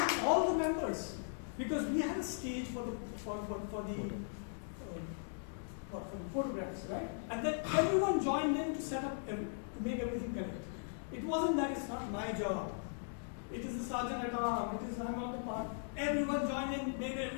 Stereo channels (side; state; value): right; silent; digital silence